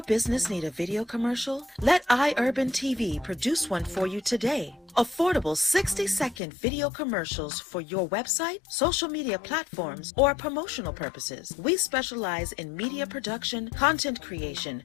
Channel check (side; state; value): right; drops out; at 6.4 s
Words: business need a video commercial? Let iUrban TV produce one for you today. Affordable 60-second video commercials for your website, social media platforms, or promotional purposes. We specialize in media production, content creation,